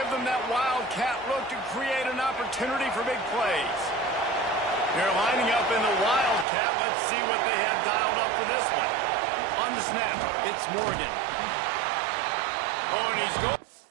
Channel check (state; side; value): drops out; left; at 6.5 s